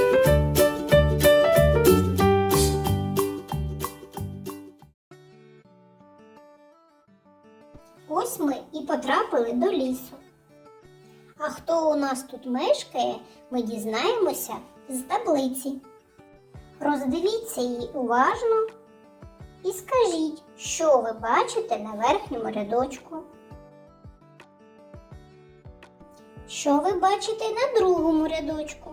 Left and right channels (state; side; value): identical; both; correlation 1.00